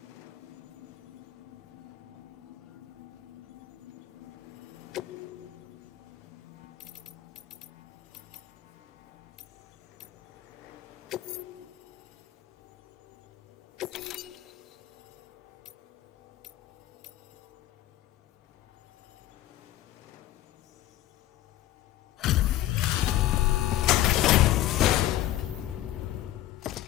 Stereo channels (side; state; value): right; quieter; 14.2 dB